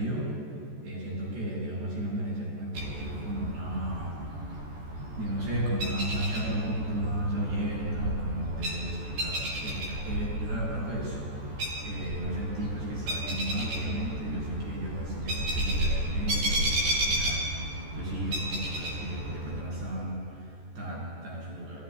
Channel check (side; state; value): left; late; 14 ms